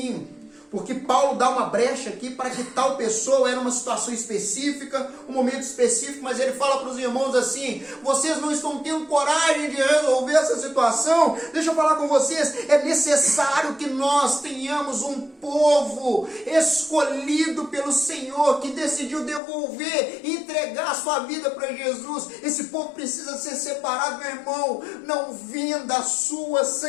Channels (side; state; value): right; drops out; at 19.4 s